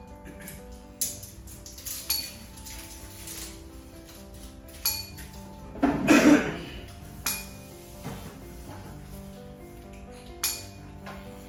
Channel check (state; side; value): identical; both; correlation 1.00